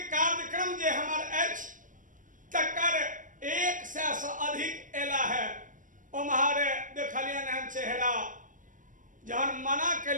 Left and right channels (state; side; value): late; left; 0.38 ms